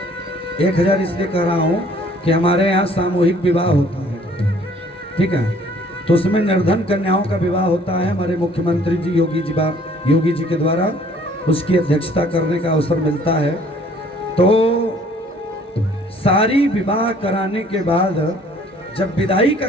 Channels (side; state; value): both; normal; correlation 0.57